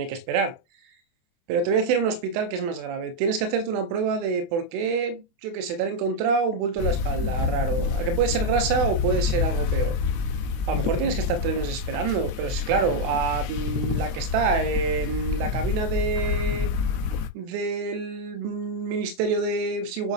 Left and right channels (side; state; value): left; late; 24 ms